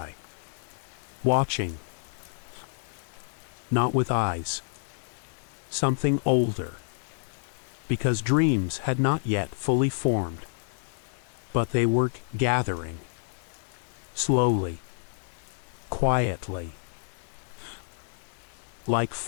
watching, not with eyes. Something older, because dreams had not yet fully formed, but they were gathering, slowly, quietly, like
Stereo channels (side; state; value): right; silent; 59 dB below the other